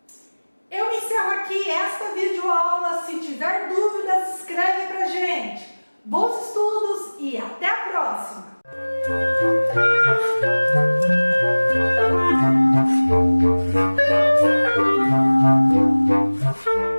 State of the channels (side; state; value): both; inverted; correlation -1.00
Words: Eu encerro aqui esta videoaula. Se tiver dúvidas, escreve pra gente. Bons estudos e até a próxima!